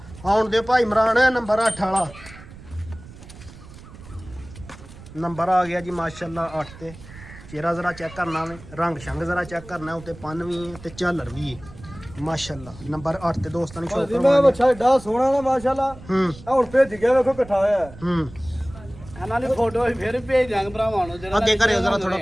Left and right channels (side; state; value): right; noise; rumble, 18 dB below the sound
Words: ਆਉਣ ਦੇ ਭਾਈ ਇਮਰਾਨ ਨੰਬਰ 8 ਵਾਲਾ ਨੰਬਰ ਆ ਗਿਆ ਜੀ ਮਾਸ਼ਾਅੱਲਾ 8 ਤੇ ਚਿਹਰਾ ਜ਼ਰਾ ਚੈੱਕ ਕਰਨਾ ਵੇ ਰੰਗ ਸ਼ੰਗ ਜ਼ਰਾ ਚੈੱਕ ਕਰਨਾ ਉੱਤੇ ਪੰਨ ਵੀ ਹੈ ਤੇ ਝਾਲਰ ਵੀ ਹੈ ਮਾਸ਼ਾਅੱਲਾ ਨੰਬਰ 8 ਤੇ ਦੋਸਤਾਂ ਨੂੰ ਸ਼ੌਕ ਭਾਜੀ ਮੈਂ ਕਰਵਾਉਣਾ ਬੱਚਾ ਏਡਾ ਸੋਹਣਾ ਨਾ ਮਾਸ਼ਾਅੱਲਾ ਹੂੰ ਆ ਹੁਣ ਭੇਜ ਗਿਆ ਵੇਖੋ ਇਕੱਠਾ ਹੋਇਆ ਹੈ। ਹੂੰ ਇਹਨਾਂ ਦੀ ਫੋਟੋ ਅਸੀਂ ਫਿਰ ਭੇਜ ਦਾਂਗੇ ਭਰਾਵਾਂ ਨੂੰ ਜਿਹੜਾ ਅੱਗੇ ਕਰਿਓ ਜ਼ਰਾ ਥੋੜਾ